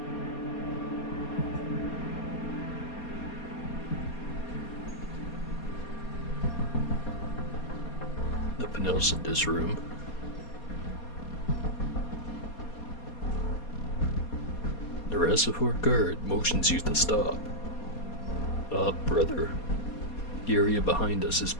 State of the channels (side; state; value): right; late; 4.2 ms